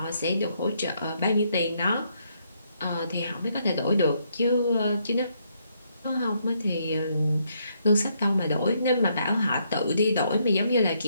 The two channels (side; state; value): both; inverted; correlation -0.74